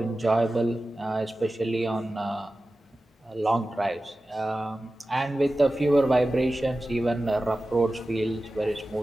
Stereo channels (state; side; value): normal; both; correlation 0.95